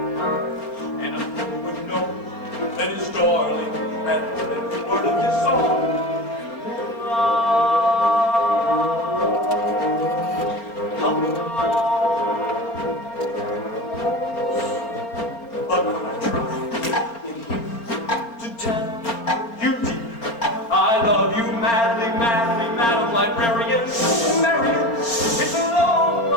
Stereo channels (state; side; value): late; right; 4.3 ms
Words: and a man would know that his darling had heard the word of his song. In the moonlight, help me along.